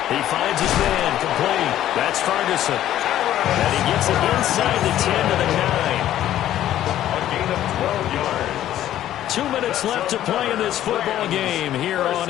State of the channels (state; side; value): quieter; right; 12.4 dB